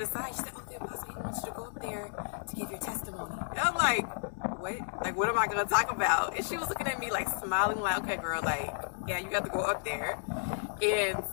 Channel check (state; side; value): silent; right; digital silence